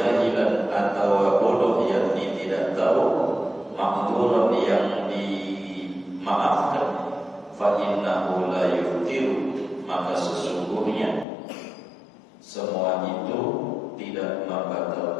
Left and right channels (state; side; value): drops out; right; at 11.2 s